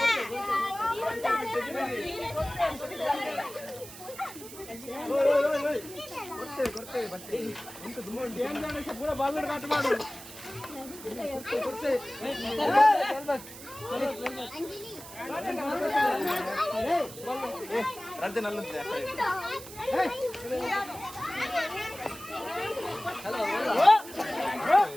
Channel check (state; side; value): noise; right; hiss, 15 dB below the sound